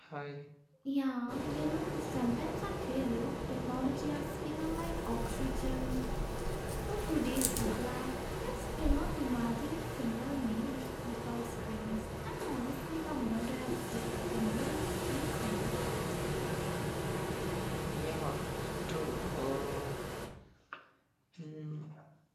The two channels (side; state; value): both; identical; correlation 1.00